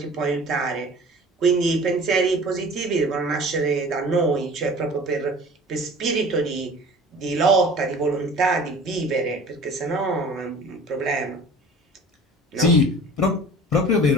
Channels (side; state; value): both; normal; correlation 0.44